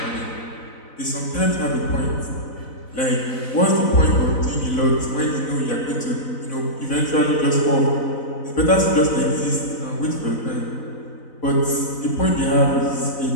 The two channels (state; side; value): late; right; 4.0 ms